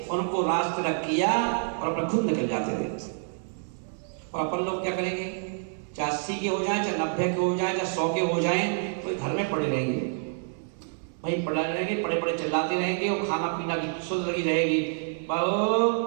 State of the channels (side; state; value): left; silent; 60 dB below the other